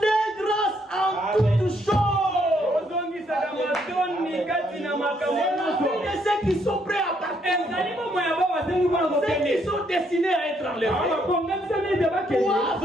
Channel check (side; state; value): both; normal; correlation 0.72